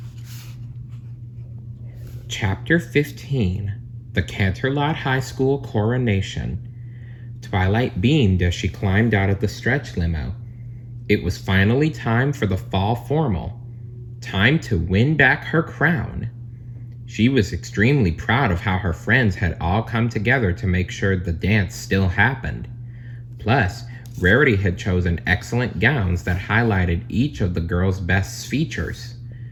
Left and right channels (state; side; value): identical; both; correlation 1.00